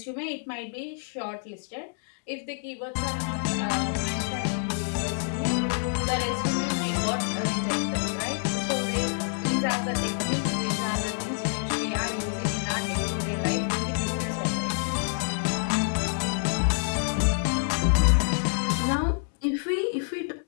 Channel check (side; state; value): right; silent; digital silence